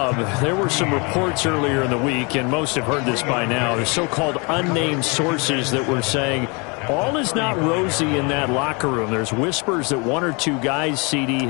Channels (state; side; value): quieter; right; 30.7 dB